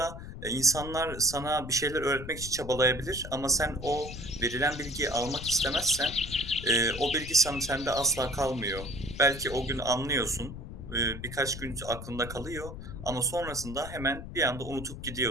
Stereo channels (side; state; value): left; noise; rumble, 10 dB below the sound